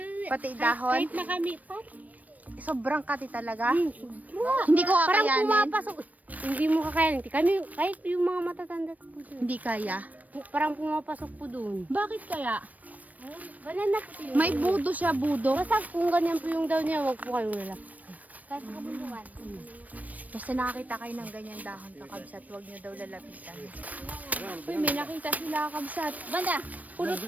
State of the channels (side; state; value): left; late; 0.074 ms